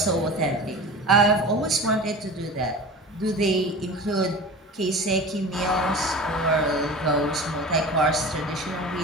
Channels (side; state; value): both; normal; correlation 0.35